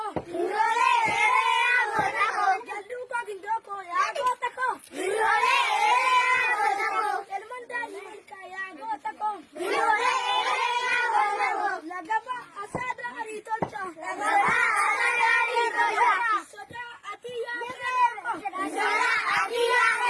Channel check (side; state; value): both; identical; correlation 1.00